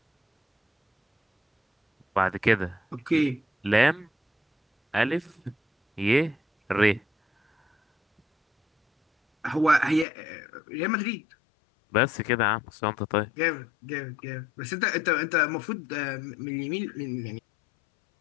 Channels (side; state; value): right; drops out; at 10.1 s